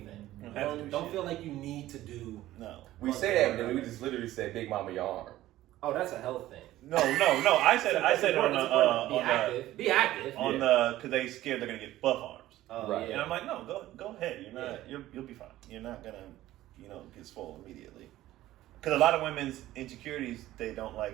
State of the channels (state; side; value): quieter; left; 15.1 dB